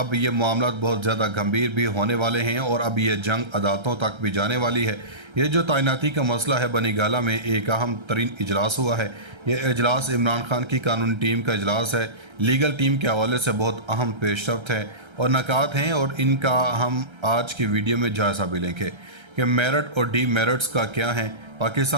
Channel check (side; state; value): left; late; 1.3 ms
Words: ये मामला बहुत ज़्यादा गंभीर भी होने वाले हैं और अब ये जंग अदालतों तक भी जाने वाली है। ये जो तैनाती का मसला है, बनी गाला में एक अहम तरीन इजलास हुआ है। ये इजलास इमरान खान की कानूनी टीम का इजलास है। लीगल टीम के हवाले से बहुत अहम पेशरफ्त है और नकात हैं और इनका हम आज की वीडियो में जायज़ा भी लेंगे कि मेरिट और डी मेरिट्स का क्या है,